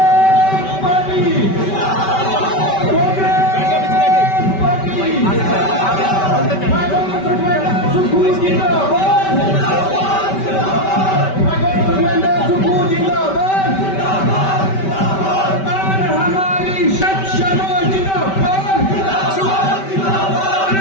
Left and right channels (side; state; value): right; late; 5.2 ms